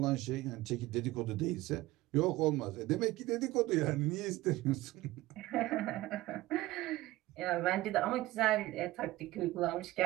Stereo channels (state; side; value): quieter; left; 17.8 dB